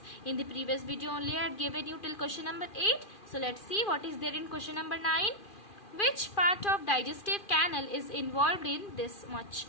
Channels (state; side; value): late; right; 2.4 ms